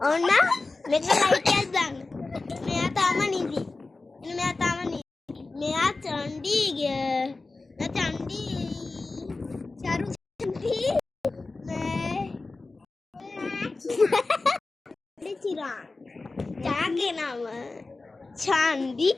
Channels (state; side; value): quieter; right; 3.5 dB